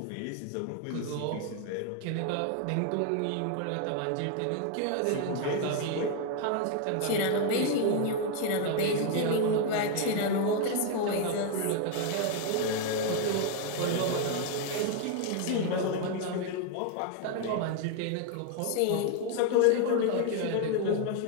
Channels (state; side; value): different; both; correlation 0.01